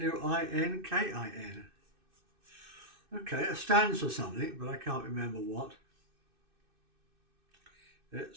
Okay, it stands for something, but I can't remember what.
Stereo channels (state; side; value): late; left; 2.6 ms